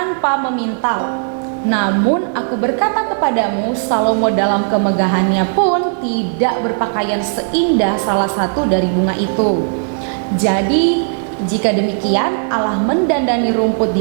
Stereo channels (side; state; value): left; silent; 61 dB below the other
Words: memintal. Namun aku berkata kepadamu, Salomo dalam kemegahannya pun tidak berpakaian seindah salah satu dari bunga itu. Jadi jika demikian Allah mendandani rumput